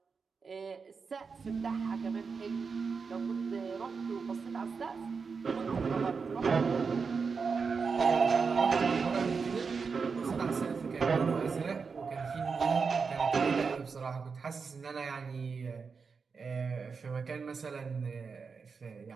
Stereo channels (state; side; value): quieter; left; 5.2 dB